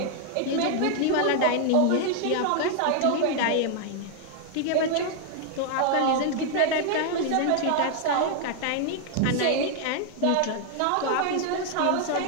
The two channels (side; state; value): both; different; correlation 0.00